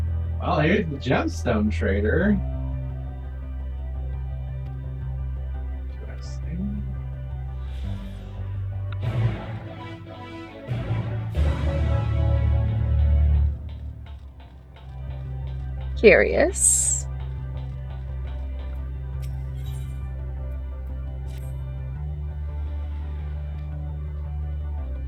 Well, here's the gemstone trader. Interesting. Curious.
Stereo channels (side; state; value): both; identical; correlation 1.00